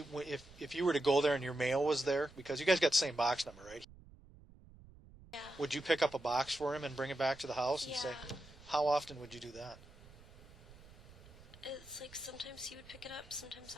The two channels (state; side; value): noise; right; rumble, 21 dB below the sound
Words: you were to go there and your mail was there, because you guys got the same box number, right? Yeah. Would you pick up a box for him and bring it back to the house and say, Yeah. how often would you do that? It's like sometimes he would pick it up, sometimes